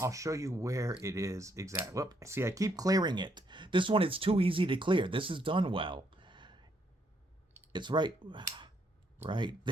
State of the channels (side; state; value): both; normal; correlation 0.72